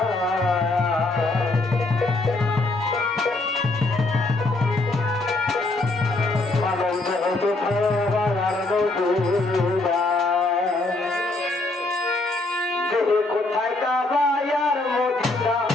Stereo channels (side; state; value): right; quieter; 3.0 dB